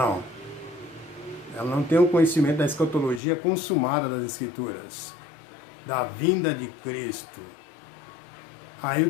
Ela não tem o conhecimento da escatologia consumada das Escrituras, da vinda de Cristo. Aí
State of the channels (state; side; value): drops out; right; at 3.2 s